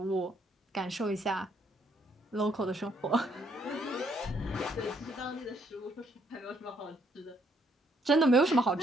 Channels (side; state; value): both; normal; correlation 0.70